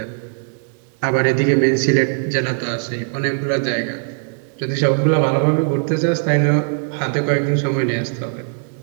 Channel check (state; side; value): silent; left; 59 dB below the other